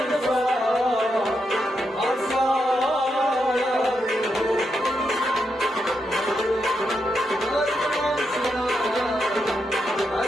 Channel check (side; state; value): both; normal; correlation 0.83